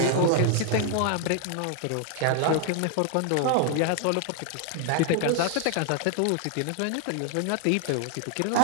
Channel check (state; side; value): different; both; correlation 0.00